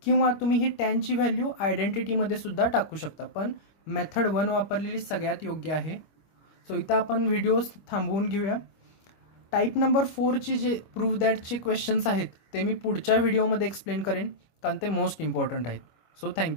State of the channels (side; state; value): right; late; 25 ms